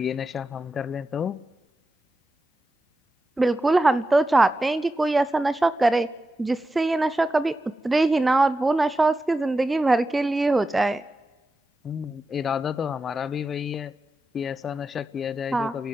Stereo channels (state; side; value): normal; both; correlation 0.91